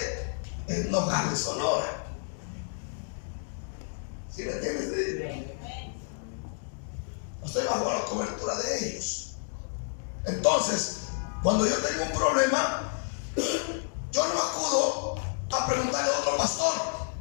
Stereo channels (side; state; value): right; silent; digital silence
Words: es Nogales, Sonora. ¿Sí me entiendes? Estoy bajo la cobertura de ellos. Entonces, cuando yo tengo un problema, yo no acudo a preguntarle a otro pastor.